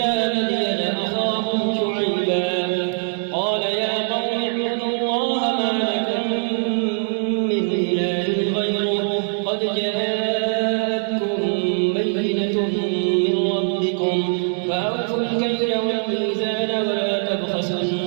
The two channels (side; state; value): left; silent; 64 dB below the other